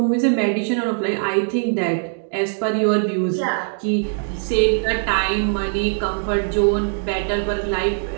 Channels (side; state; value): left; silent; digital silence